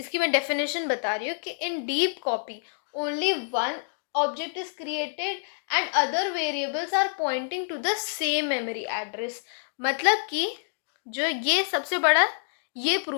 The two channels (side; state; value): right; silent; digital silence